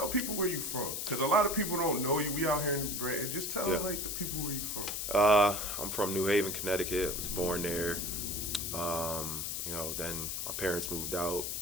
people where you from. Because a lot of people don't know you. We out here in New Britain. Just tell, the people where you from. I'm from New Haven, Connecticut. I was born there. Then my parents moved out,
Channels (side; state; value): left; noise; hiss, 3 dB below the sound